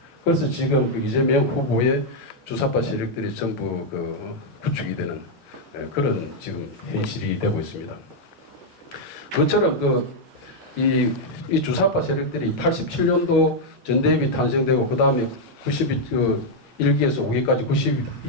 그래서 지금 그 이재명 후보의 주사파 세력들이 전부 그 구축이 되는 그런 지금 현실이 되고 있습니다. 그처럼 이 주사파 세력들이 87년도 전대협이 탄생되고 그 다음에 1기에서 5기까지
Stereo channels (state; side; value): normal; both; correlation -0.02